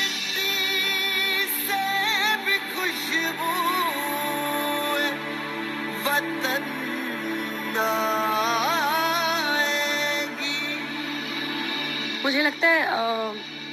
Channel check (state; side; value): identical; both; correlation 1.00